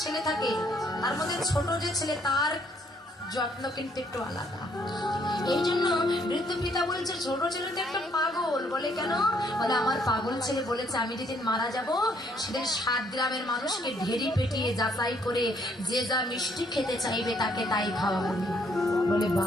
ছেলে থাকে তার মধ্যে ছোট যে ছেলে তার যত্ন কিন্তু একটু আলাদা। এই জন্য বৃদ্ধ পিতা বলছে ছোট ছেলে তো একটা পাগল। বলে কেন? বলে আমার পাগল ছেলে বলেছে আমি যেদিন মারা যাব সেদিন 7 গ্রামের মানুষকে ঢেরি পেটিয়ে যাচাই করে যে যা মিষ্টি খেতে চাইবে তাকে তাই খাওয়াবো। বলে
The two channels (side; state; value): both; normal; correlation 0.67